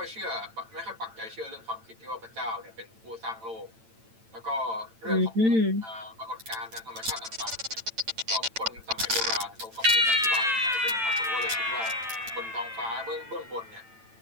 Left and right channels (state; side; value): late; left; 8.9 ms